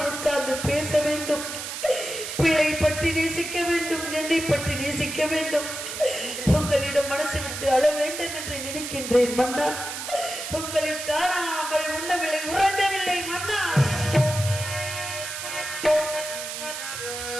உட்கார்ந்து பேச வேண்டும். பிள்ளை பற்றி நேசிக்க வேண்டும், என்னை பற்றி நேசிக்க வேண்டும். உங்களிடம் மனசு விட்டு அழ வேண்டும் என்று நினைக்கின்றேன் மன்னா. உங்களை காணாமல் உண்ணவில்லை, உறங்கவில்லை மன்னா.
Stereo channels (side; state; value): right; noise; hiss, 6 dB below the sound